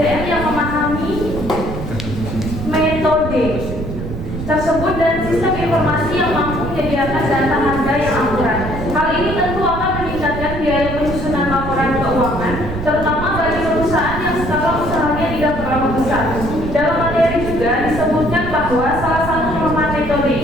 menyediakan data harga yang akurat. Hal ini tentu akan meningkatkan biaya penyusunan laporan keuangan, terutama bagi perusahaan yang skala usahanya tidak terlalu besar. Dalam materi juga disebutkan bahwa salah satu kelemahan metode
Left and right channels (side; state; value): right; noise; rumble, 7 dB below the sound